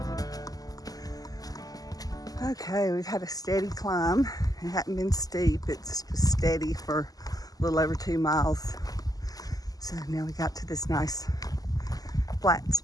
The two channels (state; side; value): late; right; 0.17 ms